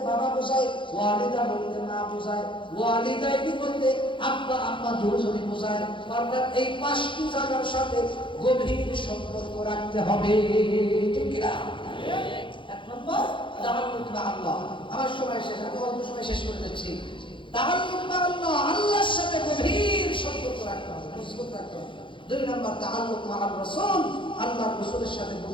বাবা বোঝায়, ওয়ালিদা বলতে মা বোঝায়, ওয়ালিদাইনি বলতে আব্বা আম্মা দুজনই বোঝায়। অর্থাৎ এই 5টি জায়গার সাথে গভীর সম্পর্ক রাখতে হবে, ঠিক কি না? এক নম্বর তাআল্লুক মা'আল্লাহ। আমার সময় শেষ, আমি অল্প সময় শেষ করে দিচ্ছি। তাআল্লুক মা'আল্লাহ, আল্লাহর সাথে গভীর সম্পর্ক রাখতে হবে, মজবুত রাখতে হবে। 2 নম্বর তাআল্লুক মা'আর রাসূল, আল্লাহর রাসূলের সাথে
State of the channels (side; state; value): right; late; 0.24 ms